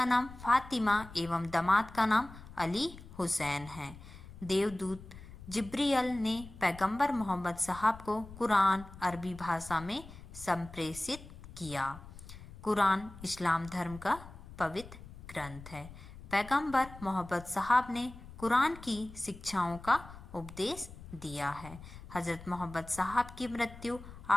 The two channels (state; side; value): noise; left; rumble, 16 dB below the sound